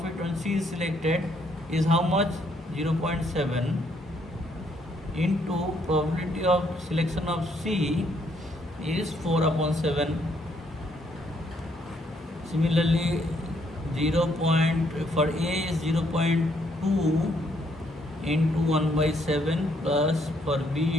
when C is selected is how much? 0.7 into probability of selection of C is 4 upon 7. Similarly, for A is 0.2 into 1 by 7, plus for B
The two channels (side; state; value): both; normal; correlation 0.71